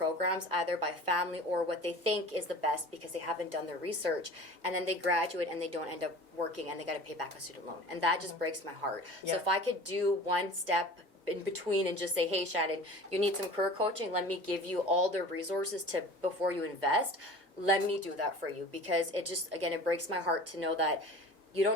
either by family or what they think is the best because they haven't done their research, and then they graduate and they don't end up working and they got to pay back a student loan, and that just breaks my heart. So if I could do one step in between and just say, hey Shannon, you need some career coaching, let me give you all the resources to before you invest, let me do that for you, because it just, again, it breaks my heart to know that you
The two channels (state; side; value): normal; both; correlation 0.40